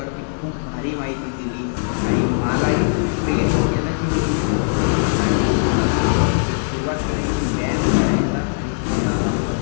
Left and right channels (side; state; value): right; silent; digital silence